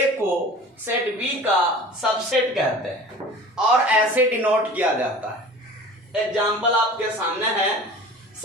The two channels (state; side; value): normal; both; correlation 0.41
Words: को सेट बी का सबसेट कहते हैं और ऐसे डिनोट किया जाता है। एग्जाम्पल आपके सामने है,